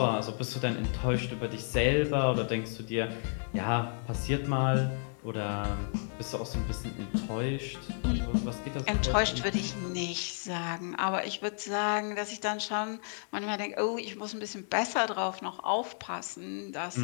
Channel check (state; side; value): silent; right; 56 dB below the other